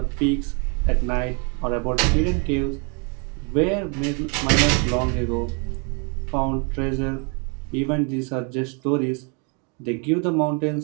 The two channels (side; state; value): left; quieter; 35.7 dB